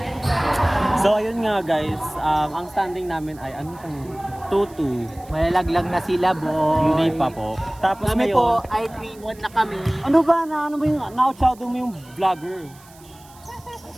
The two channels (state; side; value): noise; right; hiss, 25 dB below the sound